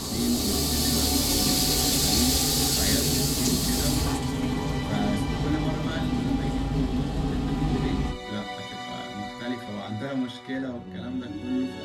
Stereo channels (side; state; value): both; identical; correlation 1.00